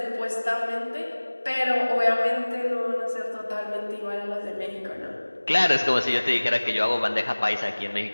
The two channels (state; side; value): inverted; both; correlation -1.00